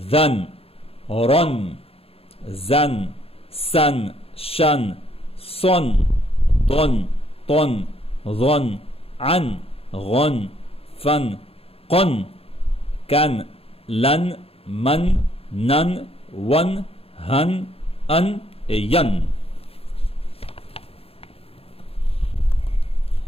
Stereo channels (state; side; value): late; right; 0.28 ms